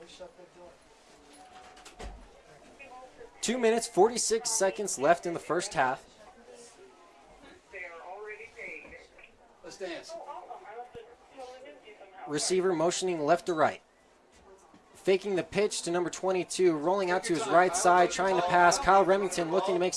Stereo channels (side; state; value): both; identical; correlation 1.00